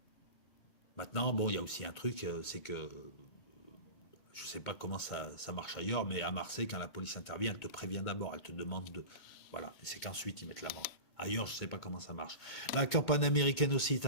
Maintenant, bon, il y a aussi un truc, c'est que je ne sais pas comment ça marche ailleurs, mais à Marseille, quand la police intervient, elle te prévient d'abord, elle te demande de... Voilà, et c'est qu'ensuite ils mettent l'amende. Ailleurs, je ne sais pas comment ça marche. La campagne américaine aussi est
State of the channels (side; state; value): right; late; 2.2 ms